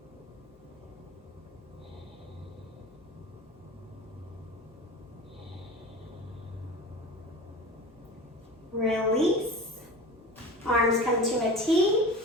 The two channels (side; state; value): both; normal; correlation 0.34